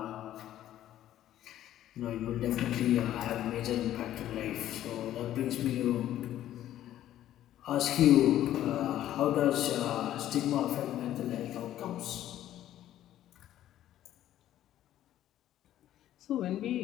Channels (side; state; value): right; quieter; 12.5 dB